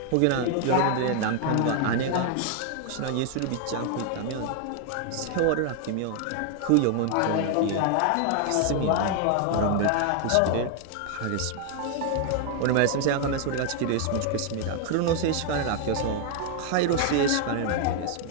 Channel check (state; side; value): different; both; correlation 0.00